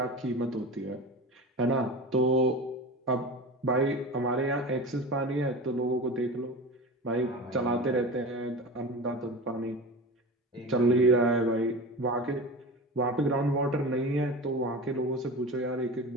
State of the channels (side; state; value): both; normal; correlation 0.30